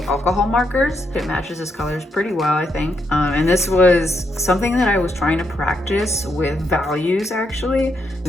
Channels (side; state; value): both; normal; correlation 0.79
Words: alcohol markers. It matches his colors pretty well, I think. And this was something that I was trying to practice with values, actually. And